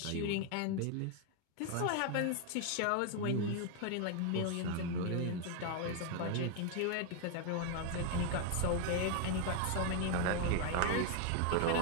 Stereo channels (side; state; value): both; different; correlation 0.01